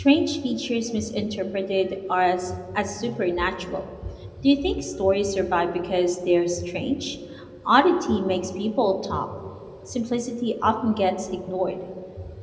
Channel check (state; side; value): identical; both; correlation 1.00